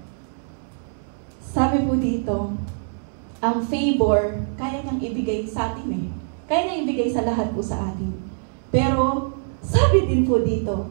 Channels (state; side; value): silent; left; digital silence